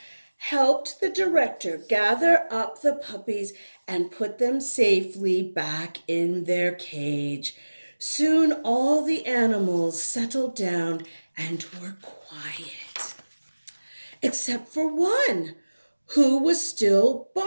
helped the director gather up the puppies and put them safely back in their cage. Soon all the animals settled down and were quiet. Except for one, who was still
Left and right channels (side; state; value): both; inverted; correlation -1.00